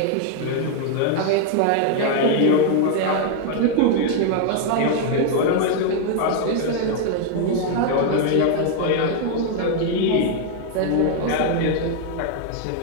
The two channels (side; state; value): both; different; correlation 0.00